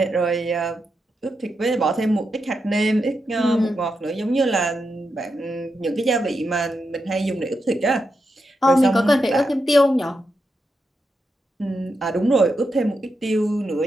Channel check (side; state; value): both; normal; correlation 0.86